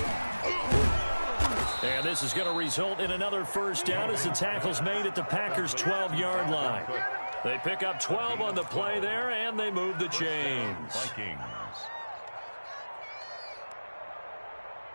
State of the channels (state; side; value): inverted; both; correlation -1.00